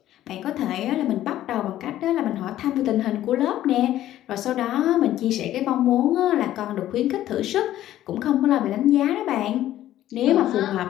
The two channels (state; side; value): quieter; right; 13.2 dB